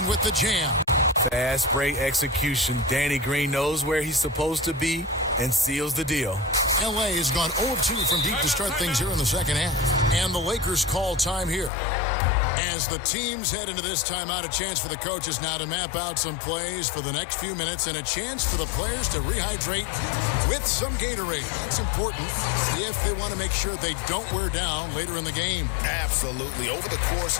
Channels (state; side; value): drops out; right; at 11.7 s